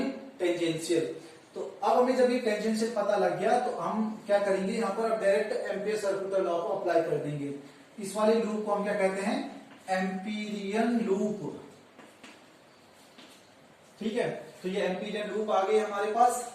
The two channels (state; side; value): identical; both; correlation 1.00